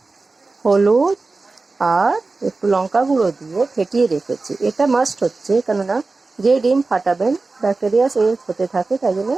হলুদ আর একটু লঙ্কা গুঁড়ো দিয়ে ফেটিয়ে রেখেছি। এটা মাস্ট হচ্ছে, কেননা যে ডিম ফাটাবেন ব্যাকটেরিয়া সে হতে থাকে, তাই জন্য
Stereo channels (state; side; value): quieter; left; 3.7 dB